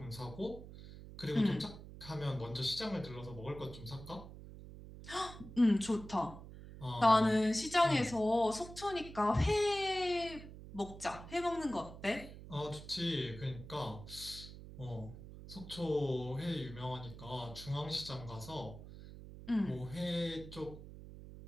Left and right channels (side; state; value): right; noise; hum, 14 dB below the sound